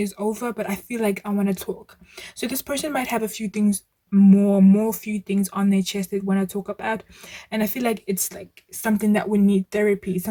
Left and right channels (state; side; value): identical; both; correlation 1.00